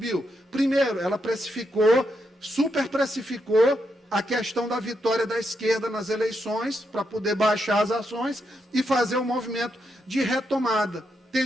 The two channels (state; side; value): normal; both; correlation 0.82